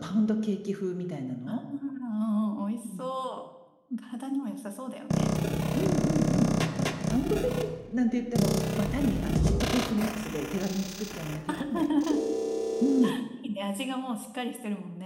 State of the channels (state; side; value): identical; both; correlation 1.00